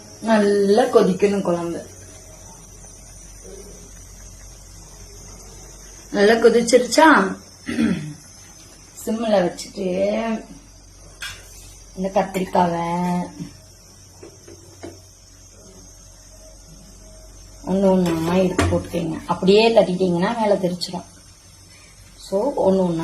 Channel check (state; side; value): identical; both; correlation 1.00